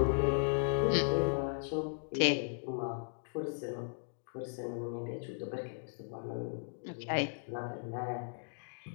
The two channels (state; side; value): silent; right; digital silence